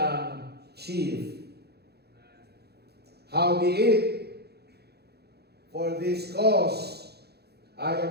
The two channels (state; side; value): late; left; 0.47 ms